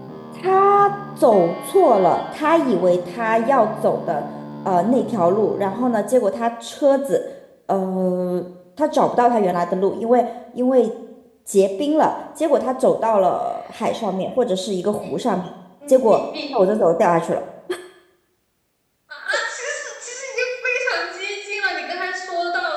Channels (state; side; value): identical; both; correlation 1.00